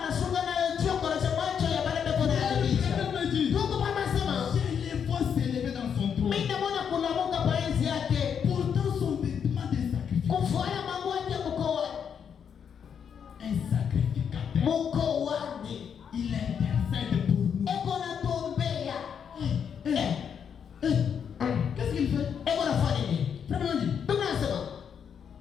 nayo choko na macho ya baada kuna yabicha. Ndugu mama sema, Je les vois s'élever dans son trône. mimi naona kulamuka pa enzi yake. Pourtant son vêtement de sacrifice. Kufuata mambo yake mkoani. Un sacrificateur. Mkoani. Il intercède pour nous. Eko na tombea. Qu'est-ce qu'il fait? Eko na fanya nini? Frère, Biblia inasema,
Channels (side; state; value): right; quieter; 7.5 dB